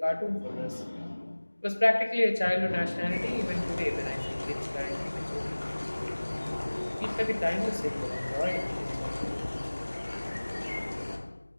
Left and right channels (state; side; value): inverted; both; correlation -1.00